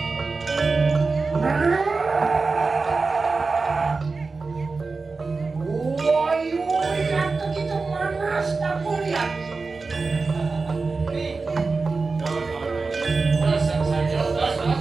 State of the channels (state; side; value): quieter; left; 4.1 dB